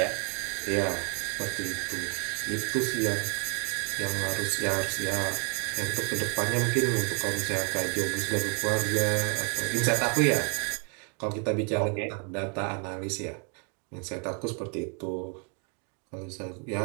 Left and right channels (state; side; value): quieter; left; 37.7 dB